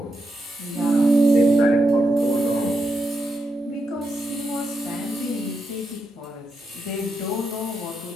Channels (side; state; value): both; normal; correlation 0.85